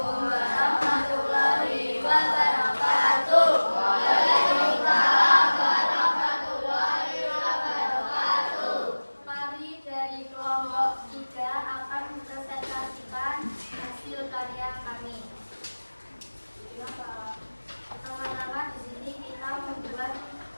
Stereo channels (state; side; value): inverted; both; correlation -1.00